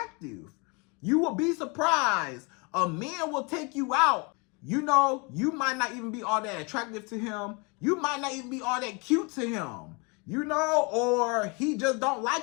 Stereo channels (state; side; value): quieter; right; 30.7 dB